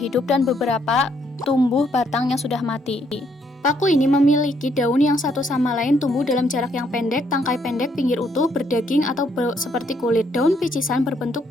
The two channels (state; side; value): normal; both; correlation 0.71